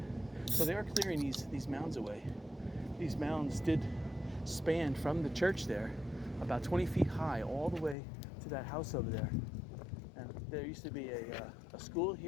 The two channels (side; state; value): right; drops out; at 8.0 s